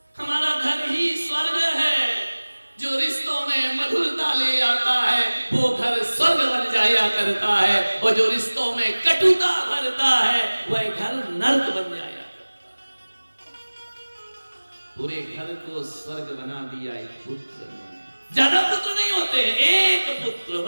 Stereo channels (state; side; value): inverted; both; correlation -1.00